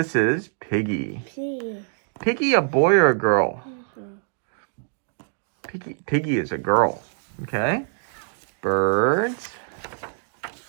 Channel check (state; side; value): silent; left; digital silence